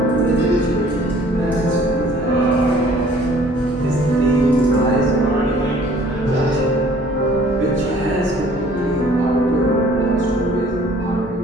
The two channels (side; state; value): both; normal; correlation 0.55